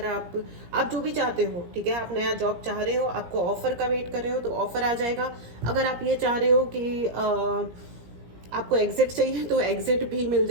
आप जो भी चाहते हो, ठीक है, आप नया जॉब चाह रहे हो, आपको ऑफर का वेट कर रहे हो तो ऑफर आ जाएगा। अगर आप ये चाह रहे हो कि आपको एग्जिट चाहिए तो एग्जिट भी मिल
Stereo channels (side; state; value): left; late; 17 ms